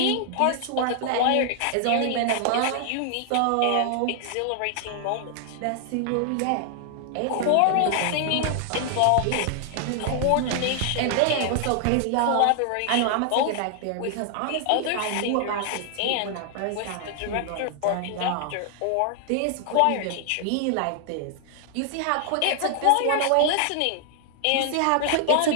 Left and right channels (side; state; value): both; different; correlation 0.00